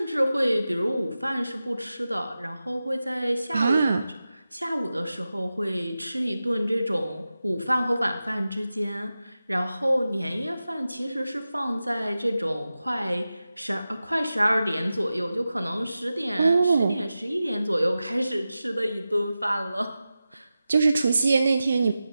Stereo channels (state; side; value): inverted; both; correlation -0.93